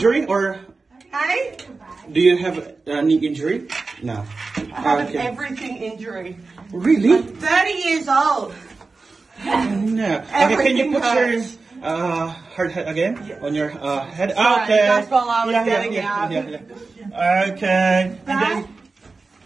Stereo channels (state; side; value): quieter; left; 4.0 dB